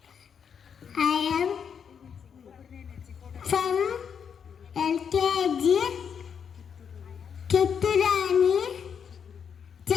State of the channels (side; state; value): right; quieter; 7.2 dB